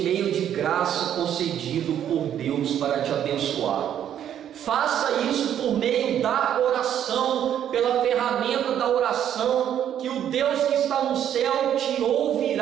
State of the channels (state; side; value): quieter; left; 10.1 dB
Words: meio de graça concedido por Deus para te abençoar. Faça isso por meio da oração, pela ferramenta da oração, que o Deus que está no céu te